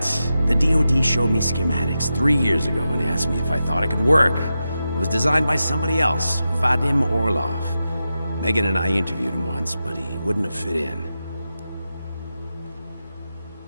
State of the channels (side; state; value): both; inverted; correlation -0.90